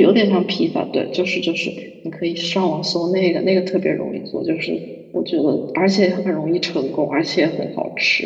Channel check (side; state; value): both; identical; correlation 1.00